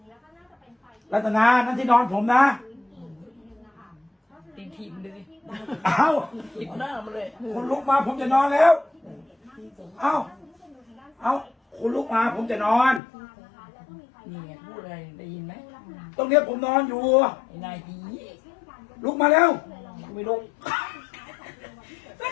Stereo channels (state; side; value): drops out; right; at 13.0 s